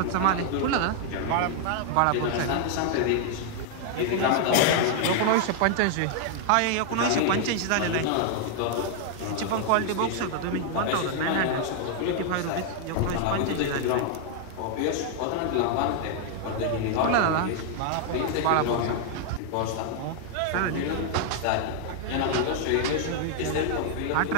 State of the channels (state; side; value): different; both; correlation 0.00